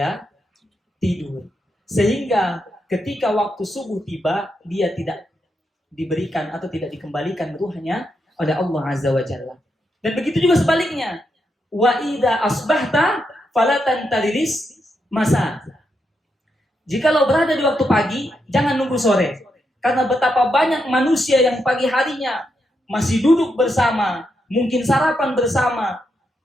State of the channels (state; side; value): normal; both; correlation 0.82